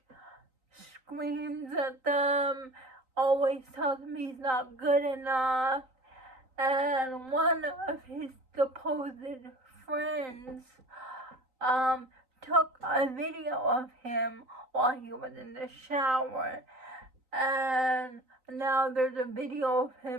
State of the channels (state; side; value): late; left; 3.9 ms